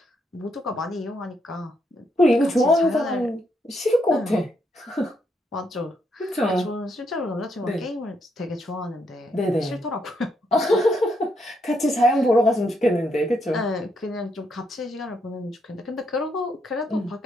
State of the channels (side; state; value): both; normal; correlation 0.77